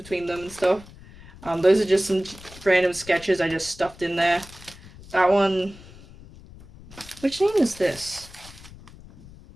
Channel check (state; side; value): noise; left; rumble, 19 dB below the sound